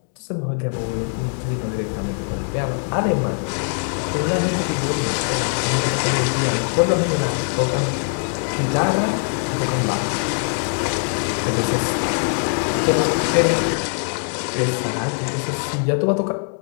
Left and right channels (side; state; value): right; silent; 64 dB below the other